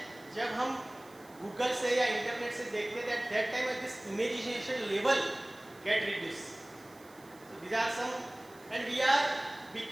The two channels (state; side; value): noise; right; hiss, 25 dB below the sound